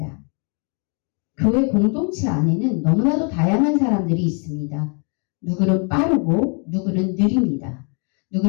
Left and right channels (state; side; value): quieter; right; 38.1 dB